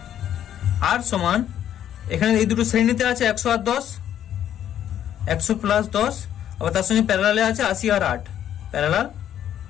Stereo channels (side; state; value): right; quieter; 10.5 dB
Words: আর সমান, এখানে এই দুটো শ্রেণীতে আছে 100 আর 10, 100 প্লাস 10, আবার তার সঙ্গে প্যারালালে আছে 80 আর 8, প্যারালাল